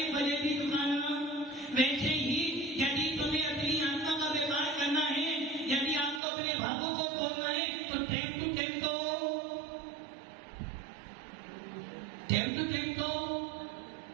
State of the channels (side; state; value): left; drops out; at 6.2 s